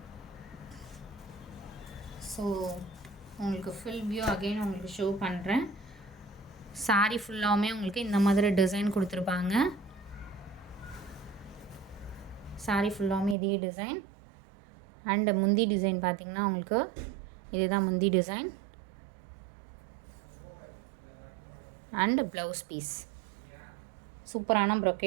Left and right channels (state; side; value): drops out; left; at 13.4 s